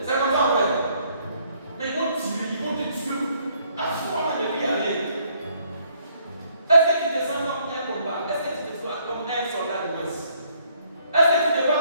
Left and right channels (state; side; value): inverted; both; correlation -0.67